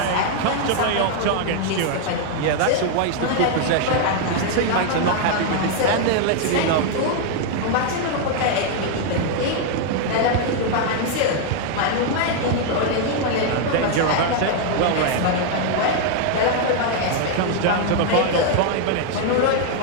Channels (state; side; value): different; both; correlation 0.00